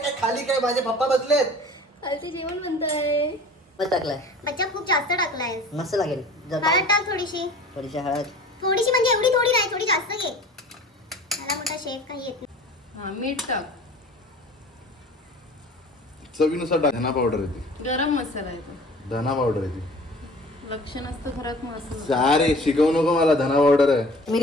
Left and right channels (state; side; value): normal; both; correlation 0.44